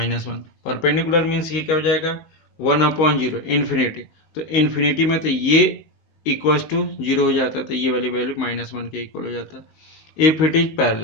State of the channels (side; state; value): right; late; 19 ms